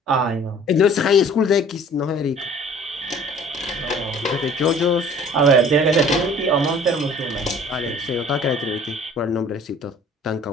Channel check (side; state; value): both; normal; correlation 0.50